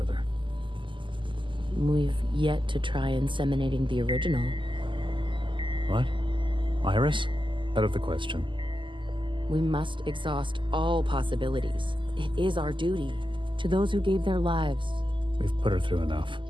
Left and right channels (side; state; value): left; late; 0.24 ms